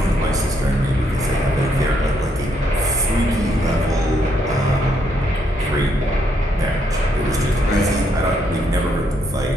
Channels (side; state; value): both; normal; correlation 0.74